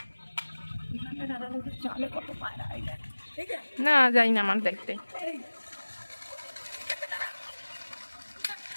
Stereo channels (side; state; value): both; inverted; correlation -1.00